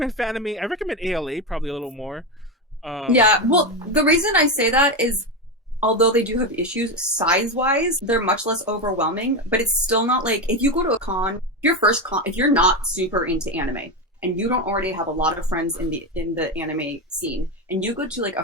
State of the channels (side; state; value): both; normal; correlation 0.13